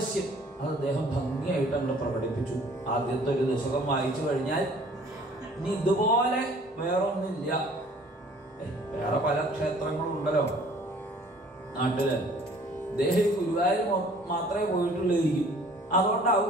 അത് അദ്ദേഹം ഭംഗിയായിട്ട് അങ്ങ് പ്രകടിപ്പിച്ചു. ആദ്യത്തെ ഒരു ദശകം വായിച്ചു കഴിഞ്ഞാൽ ഇനി ഇതുപോലെ വേറൊന്നില്ല. വേറെ പല ക്ഷേത്രങ്ങളും ഉണ്ടല്ലോ നാട്ടില്. അദ്ദേഹം ഗുരുവായൂർ മാത്രമേ പോയിട്ടുള്ളായിരിക്കും. അതുകൊണ്ടാവും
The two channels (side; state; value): both; normal; correlation 0.54